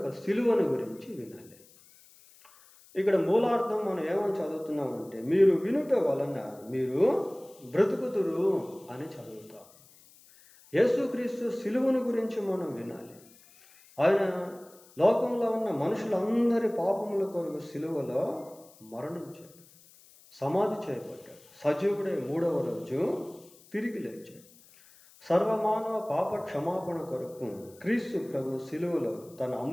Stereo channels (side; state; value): left; noise; hiss, 25 dB below the sound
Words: సిలువను గురించి వినాలి. ఇక్కడ మూలార్థం మనం ఏమని చదువుతున్నామంటే, మీరు వినుట వలన మీరు బ్రతుకుదురు అని చదువుతాం. యేసుక్రీస్తు సిలువను గురించి మనం వినాలి. ఆయన లోకంలో ఉన్న మనుషులందరి పాపముల కొరకు సిలువలో మరణించాడు, సమాధి చేయబడ్డాడు, సజీవుడై 3వ రోజు తిరిగి లేచాడు. సర్వమానవ పాప క్షమాపణ కొరకు క్రీస్తు ప్రభు సిలువలో తన